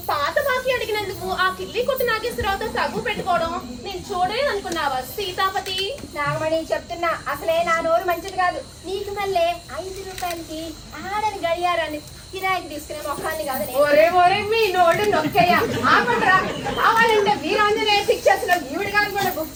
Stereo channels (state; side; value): identical; both; correlation 1.00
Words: పాత బాకీ అడిగినందుకు ఆ కిల్లి కొట్టు నాగేశ్వరరావుతో తగ్గు పెట్టుకోవడం నేను చూడలేదు అనుకున్నావా సీతాపతి? నాగమణి చెప్తున్నా, అసలే నా నోరు మంచిది కాదు. నీకు మళ్ళీ 5 రూపాయలకి ఆడని గడియారాన్ని కిరాయికి తీసుకునే మొక్కల్ని కాదు. ఒరే మీ నోడు నొక్కయ్యా, ఆపండ్రా. కావాలంటే వీరాంజనేయ పిక్చర్స్ లో ఈవిడ గారు కూడా బుక్